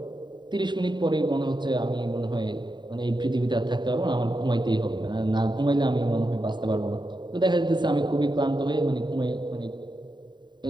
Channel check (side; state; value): left; late; 0.22 ms